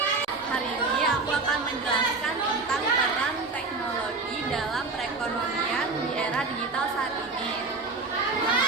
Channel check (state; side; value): quieter; left; 3.9 dB